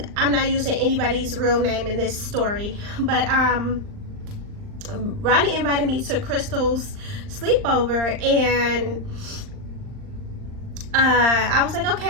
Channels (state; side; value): late; left; 39 ms